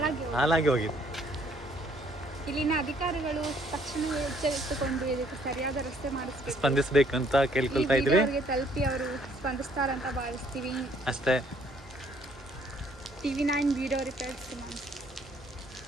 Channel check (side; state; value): both; normal; correlation 0.64